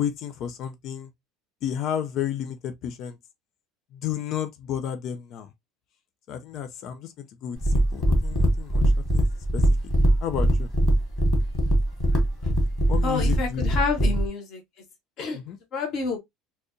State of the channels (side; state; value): both; normal; correlation 0.80